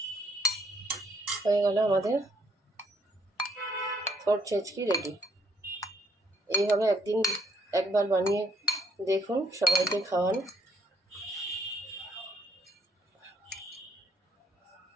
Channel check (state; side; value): normal; both; correlation 0.68